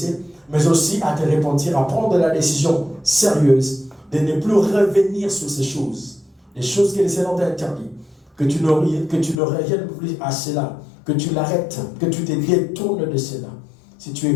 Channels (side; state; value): right; drops out; at 9.3 s